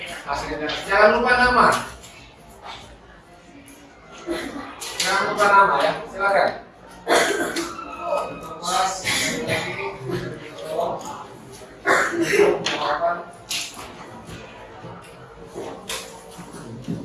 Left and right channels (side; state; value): both; identical; correlation 1.00